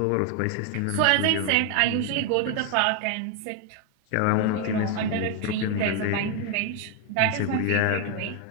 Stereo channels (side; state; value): both; different; correlation 0.01